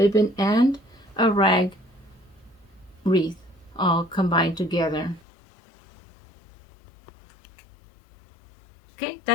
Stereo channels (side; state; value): right; drops out; at 5.2 s